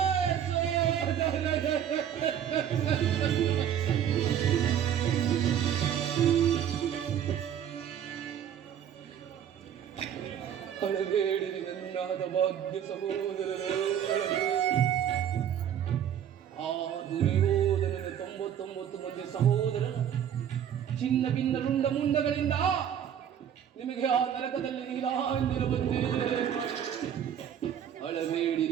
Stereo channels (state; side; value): quieter; left; 9.4 dB